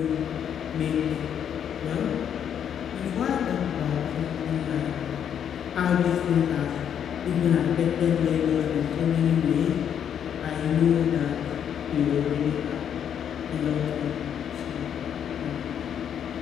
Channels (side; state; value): right; quieter; 8.8 dB